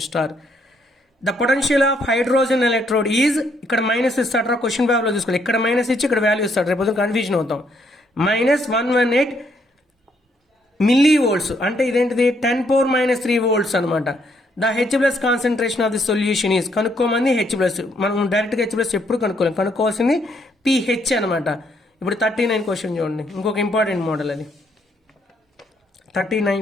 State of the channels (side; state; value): both; normal; correlation 0.71